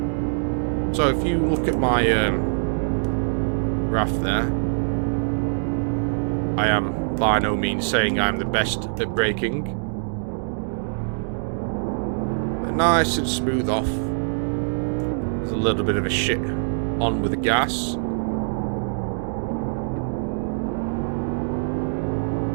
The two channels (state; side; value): silent; left; digital silence